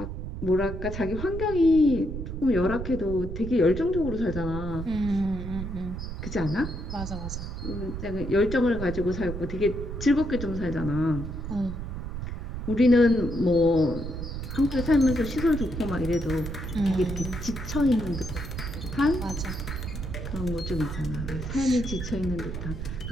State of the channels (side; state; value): right; noise; rumble, 6 dB below the sound